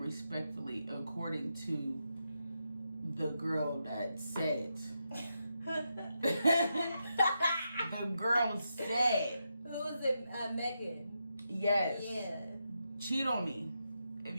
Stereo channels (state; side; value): inverted; both; correlation -0.85